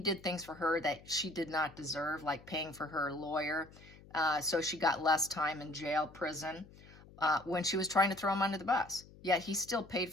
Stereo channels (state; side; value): noise; left; hum, 21 dB below the sound